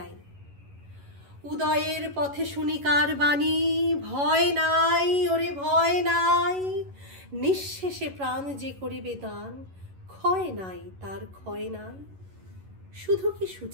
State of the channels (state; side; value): late; left; 11 ms